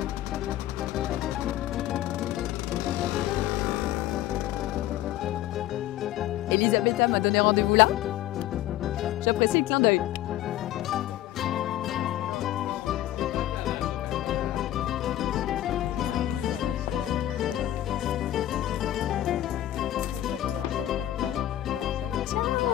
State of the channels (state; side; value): quieter; right; 13.8 dB